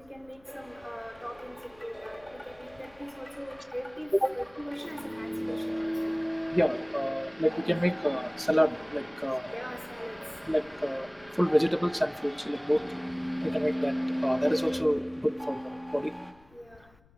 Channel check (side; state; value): left; noise; rumble, 28 dB below the sound